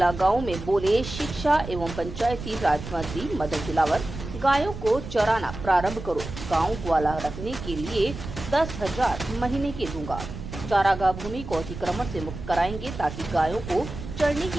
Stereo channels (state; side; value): noise; right; rumble, 10 dB below the sound